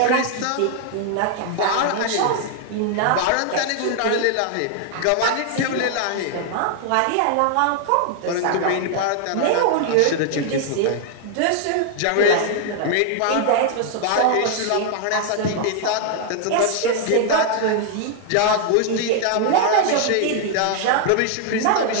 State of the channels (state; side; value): different; both; correlation 0.00